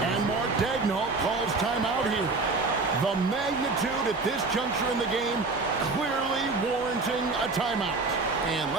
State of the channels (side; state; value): left; quieter; 3.7 dB